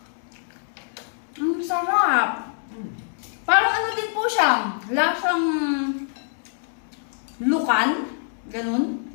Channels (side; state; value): right; silent; digital silence